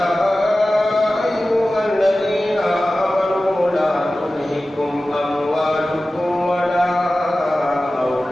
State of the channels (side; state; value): both; normal; correlation 0.95